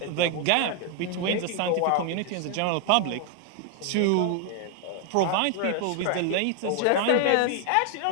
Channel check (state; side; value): different; both; correlation 0.00